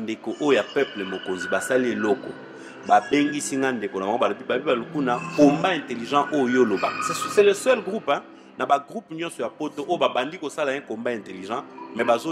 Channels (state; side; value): identical; both; correlation 1.00